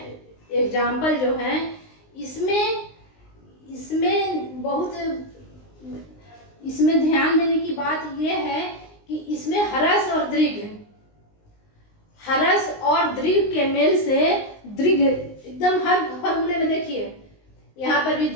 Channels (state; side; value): late; right; 19 ms